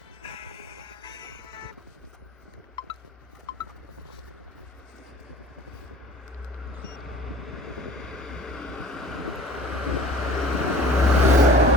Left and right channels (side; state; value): both; normal; correlation 0.46